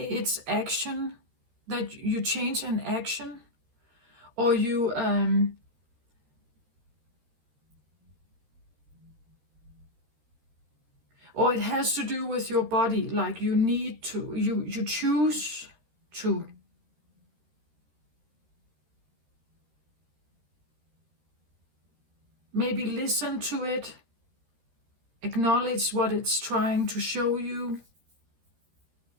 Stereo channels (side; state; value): left; late; 13 ms